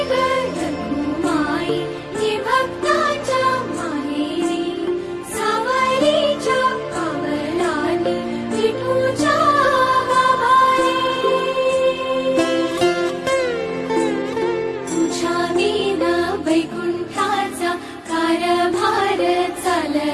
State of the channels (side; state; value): both; identical; correlation 1.00